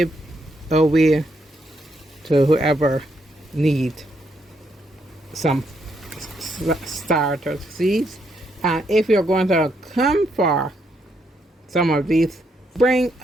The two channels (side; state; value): both; normal; correlation 0.77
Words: away to whoever needs some starter seeds. And if you're going to come for some of these, bring